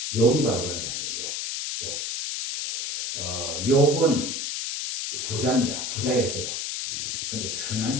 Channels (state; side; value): noise; left; hiss, 3 dB below the sound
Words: 욥이 바로 그런 사람이에요. 욥은 부자입니다. 부자였어요. 근데